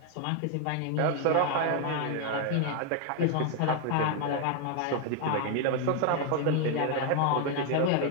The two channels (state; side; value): different; both; correlation 0.01